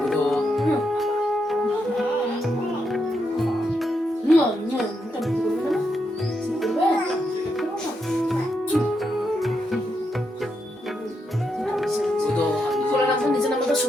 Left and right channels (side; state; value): both; normal; correlation 0.82